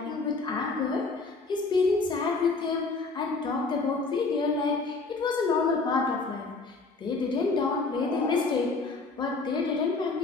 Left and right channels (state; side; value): quieter; right; 3.9 dB